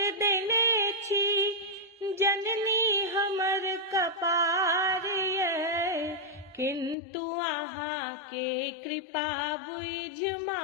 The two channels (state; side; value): drops out; right; at 7.0 s